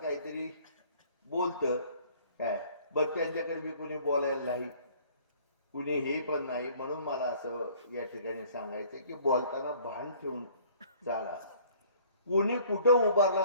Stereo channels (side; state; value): both; inverted; correlation -0.54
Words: बोलतं काय, बघ त्यांच्याकडे बी कुणी बोलायला नाही, कुणी हे पण नाही. म्हणून मला असं या ठिकाणी सांगायचं की बोलताना भान ठेवून चाला. कोणी कुठं